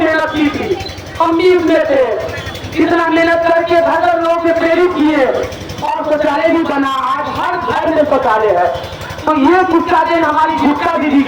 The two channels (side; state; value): both; identical; correlation 1.00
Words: की थी, हम भी उसमें थे। इतना मेहनत करके घर लोगों से प्रेरित किए और शौचालय भी बना। आज हर घर में शौचालय है। तो ये गुस्सा देन हमारी गुप्ता दीदी